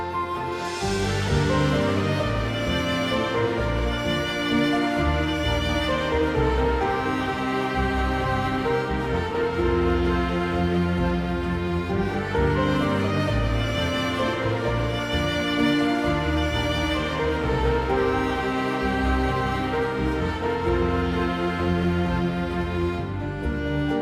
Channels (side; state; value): both; identical; correlation 1.00